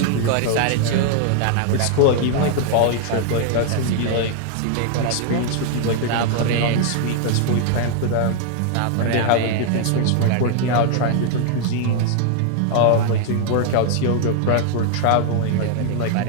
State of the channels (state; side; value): different; both; correlation 0.00